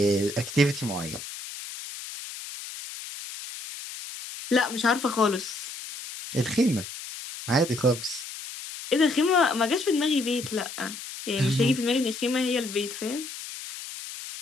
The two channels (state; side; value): noise; left; hiss, 11 dB below the sound